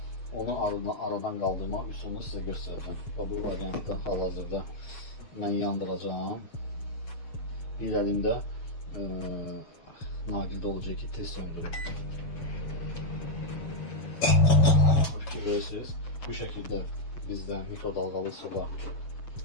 onu aradan qaldırmaq üsulunu sizə göstərəcəm. Bu variantda hal-hazırda mən yandıracağım. Bir əlimdə naqildə olacaq ki, tez söndürüm. Görürsünüz, bu şəkildə bizdən mikro dalğalı soba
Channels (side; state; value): right; late; 7.1 ms